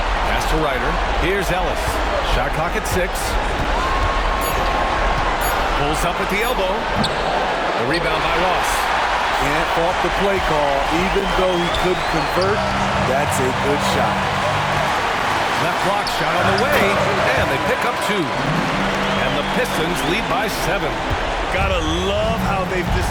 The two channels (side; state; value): both; identical; correlation 1.00